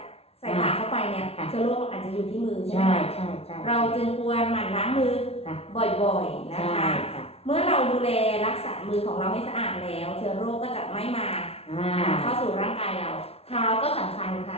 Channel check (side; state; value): right; late; 0.30 ms